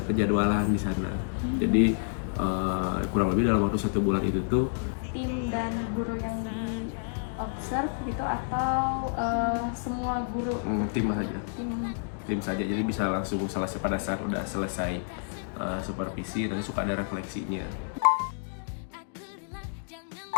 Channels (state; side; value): silent; right; digital silence